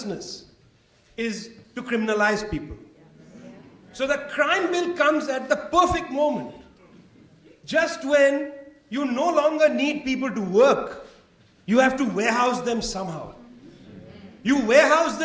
is to criminalize people. So the crime bill comes at the perfect moment. Just when you no longer need people to work, you have to warehouse them somehow. You warehouse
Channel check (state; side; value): identical; both; correlation 1.00